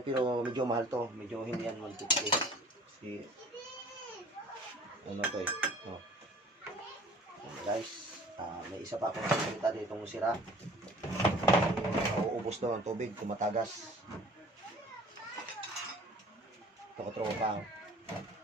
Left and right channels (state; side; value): normal; both; correlation 0.49